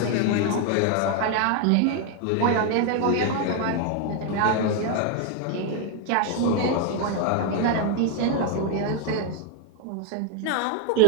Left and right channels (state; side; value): different; both; correlation 0.00